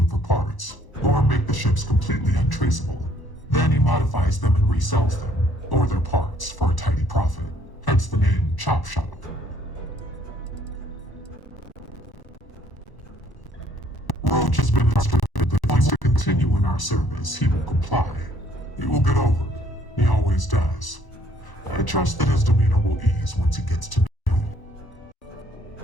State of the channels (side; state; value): right; late; 1.0 ms